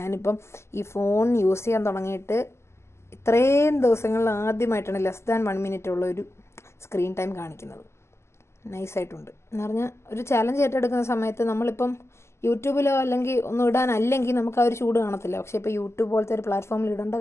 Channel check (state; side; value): late; right; 0.13 ms